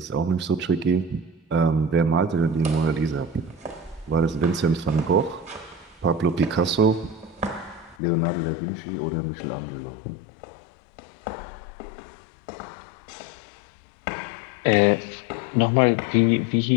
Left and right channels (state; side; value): drops out; right; at 8.0 s